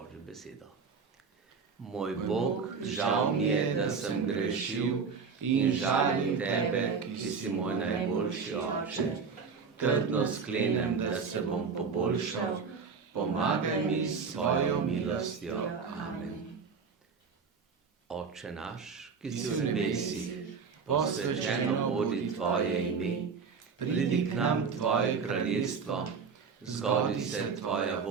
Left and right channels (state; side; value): quieter; left; 5.5 dB